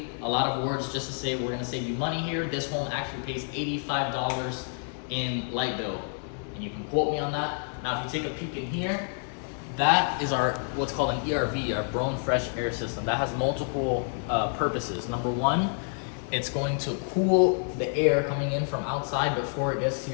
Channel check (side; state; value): right; silent; 55 dB below the other